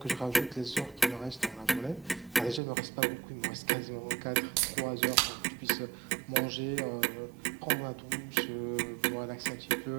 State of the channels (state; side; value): drops out; left; at 2.6 s